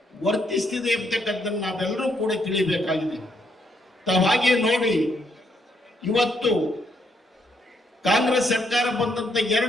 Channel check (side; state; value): both; normal; correlation 0.74